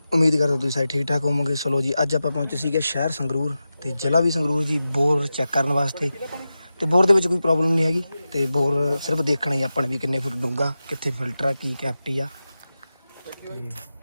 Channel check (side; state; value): both; inverted; correlation -0.93